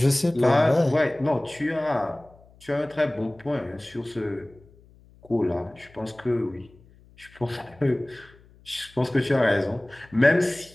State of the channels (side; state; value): left; noise; hum, 27 dB below the sound